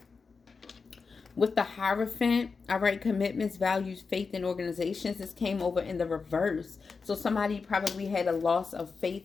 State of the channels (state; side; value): quieter; right; 4.8 dB